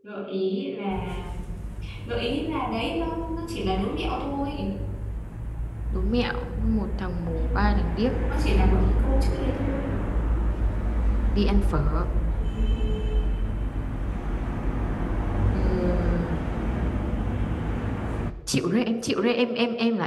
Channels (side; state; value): both; identical; correlation 1.00